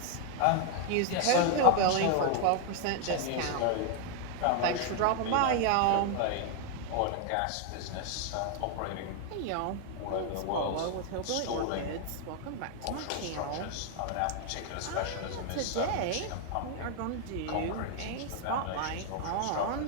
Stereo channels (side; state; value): both; different; correlation 0.01